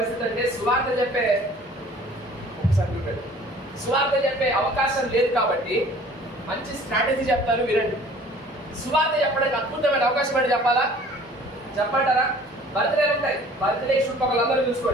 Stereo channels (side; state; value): both; normal; correlation 0.50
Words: అంటే, సువార్త చెప్పే అవకాశం లేదు కాబట్టి మంచి స్ట్రాటజీ చెప్తారు, వినండి. సువార్త చెప్పడానికి అద్భుతమైన అవకాశం అంటే చెప్పంటారా? బర్త్డేలు ఉంటాయి, బర్త్డే చుట్టుపక్కలందరూ